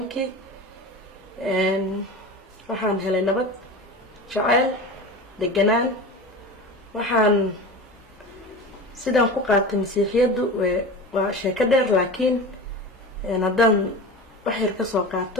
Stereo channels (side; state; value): both; normal; correlation 0.31